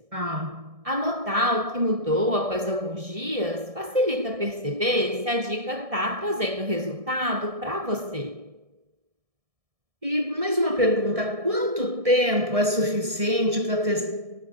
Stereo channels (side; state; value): left; late; 1.7 ms